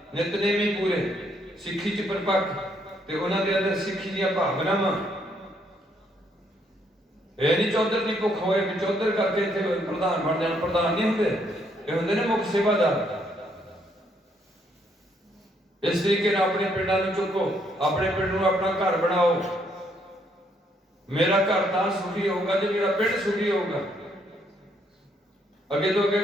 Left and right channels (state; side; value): normal; both; correlation 0.71